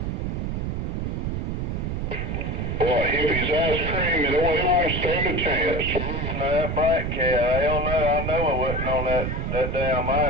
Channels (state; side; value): noise; right; rumble, 2 dB below the sound